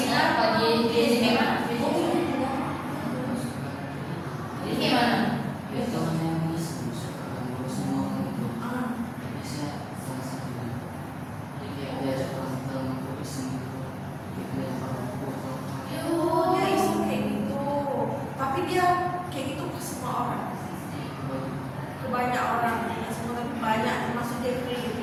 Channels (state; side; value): identical; both; correlation 1.00